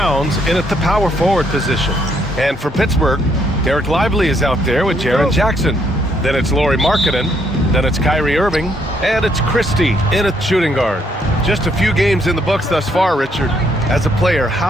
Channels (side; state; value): both; normal; correlation 0.71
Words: in at the power forward position. And for Pittsburgh, Derek Lively is out there with Jaren Jackson. Then it's Lauri Markkanen. Then it's Kyrie Irving. And it's Christie in at shooting guard. Just a few games in the books thus far, Richard. As a player,